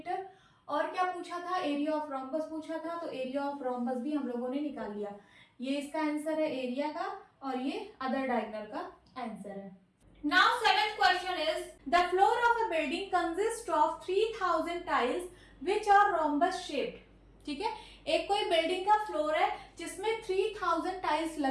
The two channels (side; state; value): both; identical; correlation 1.00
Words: और क्या पूछा था, एरिया ऑफ रोम्बस पूछा था, तो एरिया ऑफ रोम्बस भी हम लोगों ने निकाल लिया। ये इसका आंसर है एरिया का और ये अदर डायगोनल का आंसर है। Now seventh question is the floor of a building consists of 3000 tiles which are rhombus shaped। ठीक है, एक कोई बिल्डिंग का फ्लोर है जिसमें 3000 टाइल्स